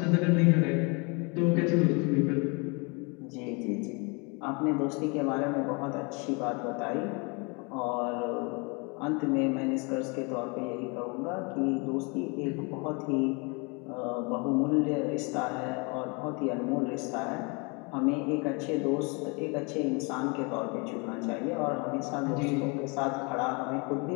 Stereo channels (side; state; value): right; quieter; 31.0 dB